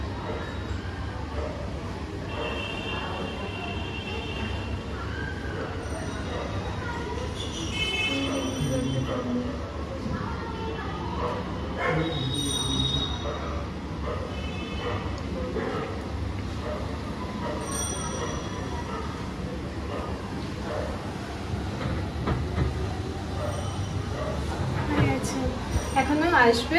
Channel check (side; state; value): both; identical; correlation 1.00